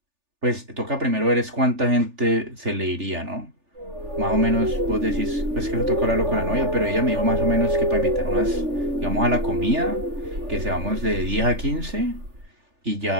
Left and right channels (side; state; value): left; late; 3.4 ms